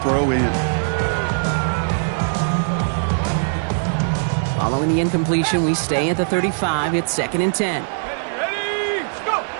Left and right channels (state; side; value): silent; left; digital silence